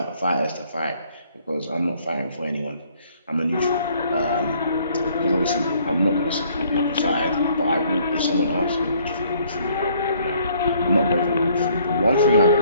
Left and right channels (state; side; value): inverted; both; correlation -0.62